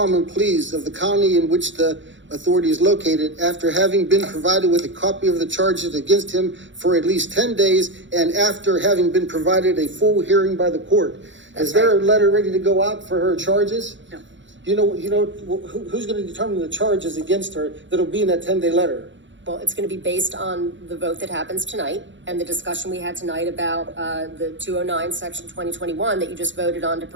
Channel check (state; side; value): late; left; 0.54 ms